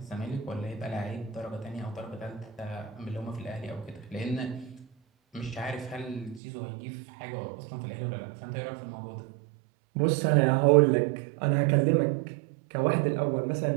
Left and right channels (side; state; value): left; drops out; at 6.4 s